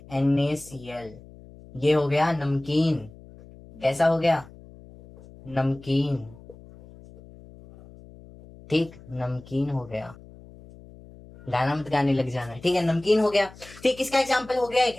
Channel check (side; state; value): left; noise; hum, 20 dB below the sound